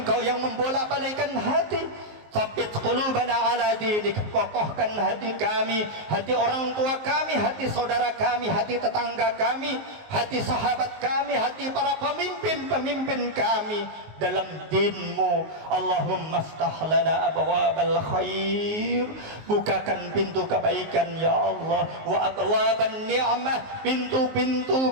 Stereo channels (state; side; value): late; left; 19 ms